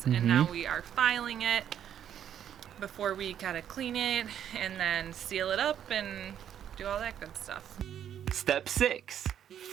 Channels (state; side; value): quieter; left; 9.7 dB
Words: and now we are filing it before we gotta clean it and then seal it up and do all that good stuff. Step 6,